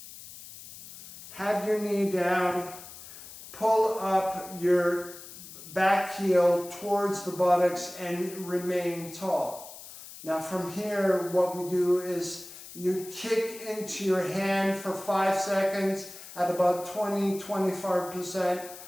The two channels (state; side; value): noise; left; hiss, 15 dB below the sound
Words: have your knee down, pull up your back heel towards the buttocks and remain tall. Now from here, what we do is you kick into your hand for 5 seconds at about 20-25%